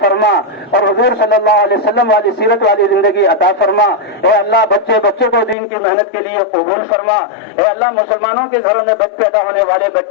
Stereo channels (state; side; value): drops out; right; at 5.6 s